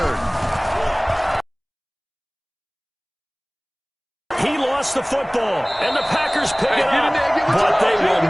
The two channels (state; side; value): identical; both; correlation 1.00